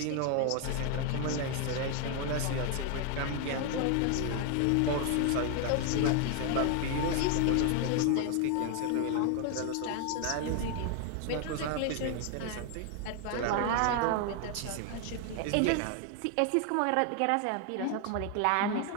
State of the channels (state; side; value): different; both; correlation 0.01